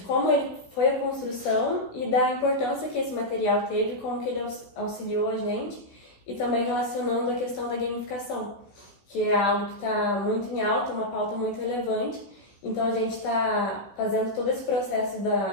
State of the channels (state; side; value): late; right; 15 ms